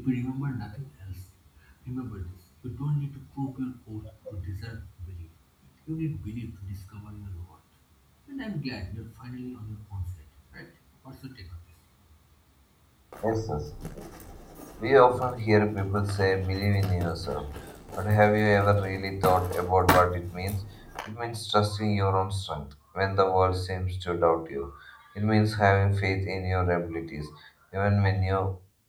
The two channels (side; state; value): both; identical; correlation 1.00